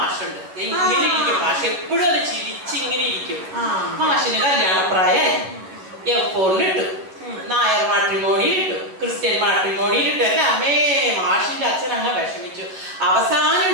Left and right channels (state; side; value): late; left; 11 ms